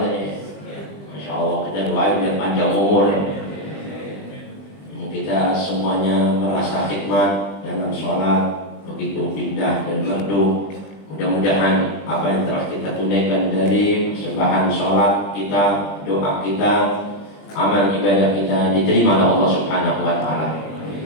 katanya. Masya Allah, kita doain biar panjang umur ya. Kita semuanya merasa hikmat dalam sholat, begitu indah dan merdu. Mudah-mudahan apa yang telah kita tunaikan dari sembahan sholat kita, doa kita, amal ibadah kita diterima oleh Allah Subhanahu wa Ta'ala.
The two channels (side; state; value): right; late; 20 ms